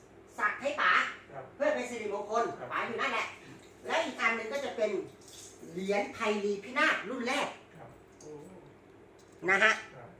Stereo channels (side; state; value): both; identical; correlation 1.00